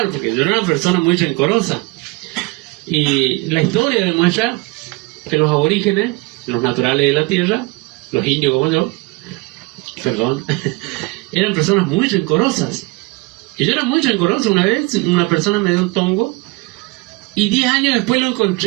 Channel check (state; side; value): quieter; left; 24.5 dB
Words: porque yo era una persona muy rencorosa. Y la historia demuestra que los aborígenes, los naturales de la tierra, los indios como yo, eran personas muy rencorosas. Y yo era muy rencoroso. Una vez una persona me dio un tongo y 10 años después lo